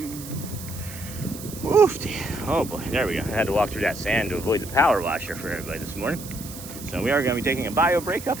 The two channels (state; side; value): noise; right; hiss, 13 dB below the sound